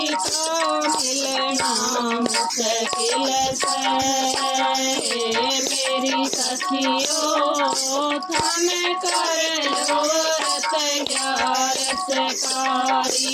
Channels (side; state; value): both; identical; correlation 1.00